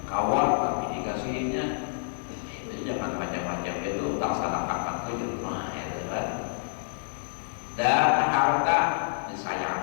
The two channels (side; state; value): right; silent; digital silence